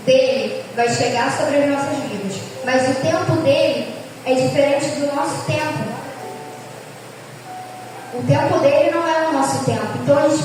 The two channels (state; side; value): identical; both; correlation 1.00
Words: dele vai chegar sobre as nossas vidas. Mas o tempo dele é diferente do nosso tempo. O tempo dele não é o nosso tempo. Então a gente